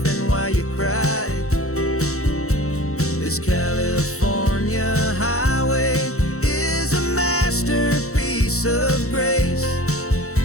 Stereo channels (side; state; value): right; late; 0.64 ms